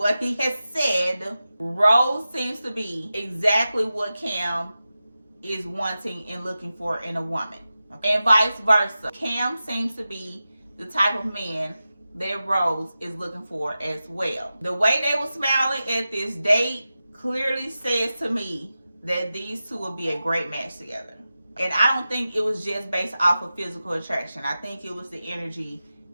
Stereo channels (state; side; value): inverted; both; correlation -0.93